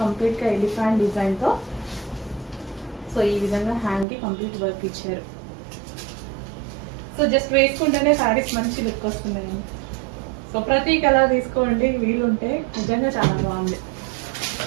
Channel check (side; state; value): left; drops out; at 4.0 s